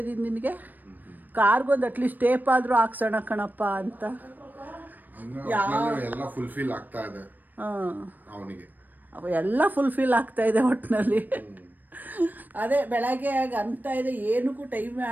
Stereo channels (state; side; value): late; left; 0.087 ms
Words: ಇದ್ದೀನಿ ನಿನಗೆ, ಕಾರ್ಗೊಂದು ಅಟ್ಲೀಸ್ಟ್ ಟೇಪ್ ಆದರೂ ಹಾಕ್ಸೋಣ ಕಣಪ್ಪ ಅಂತ. ಎಲ್ಲ ಫುಲ್ಫಿಲ್ ಆಗ್ತಾ ಇದೆ ಹಾಂ, ಅವನಿಗೆ, ಎಲ್ಲ ಫುಲ್ಫಿಲ್ ಆಗ್ತಾ ಇದೆ ಒಟ್ಟಿನಲ್ಲಿ. ಅದೇ ಬೆಳಗ್ಗೆ ಅಂತ ಇದೆ, ಏನಕ್ಕೂ ಟೈಮೇ